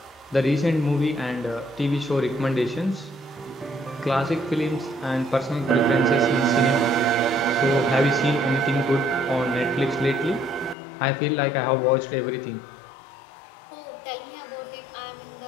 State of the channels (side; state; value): right; drops out; at 10.8 s